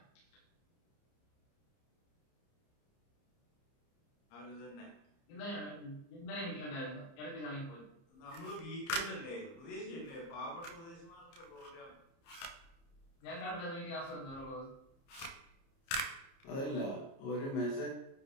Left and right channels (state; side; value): late; right; 30 ms